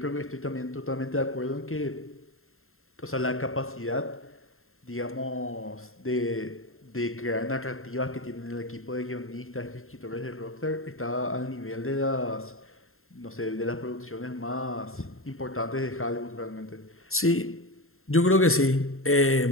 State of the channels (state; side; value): late; right; 0.61 ms